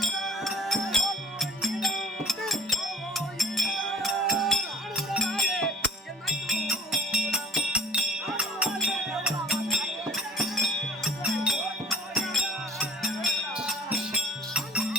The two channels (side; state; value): both; normal; correlation 0.48